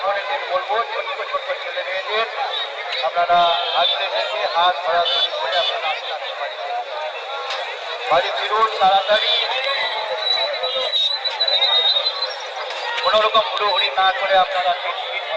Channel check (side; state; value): both; identical; correlation 1.00